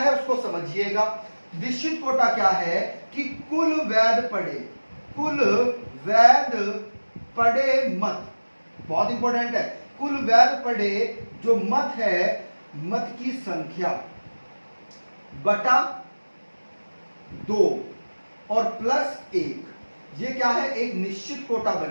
उसको समझिएगा। निश्चित कोटा क्या है? कि कुल वैध पड़े मत, बहुत इंपॉर्टेंट है, कुल वैध पड़े जो मत है, मत की संख्या बटा 2 और प्लस 1, ये क्या है? एक निश्चित कोटा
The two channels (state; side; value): inverted; both; correlation -1.00